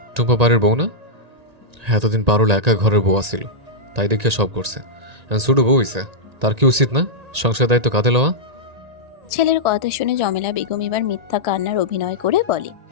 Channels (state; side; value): late; left; 1.9 ms